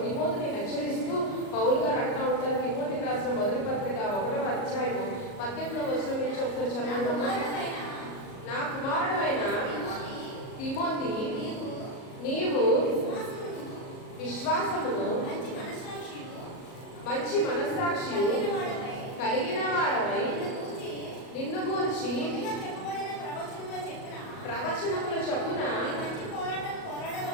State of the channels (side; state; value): right; late; 37 ms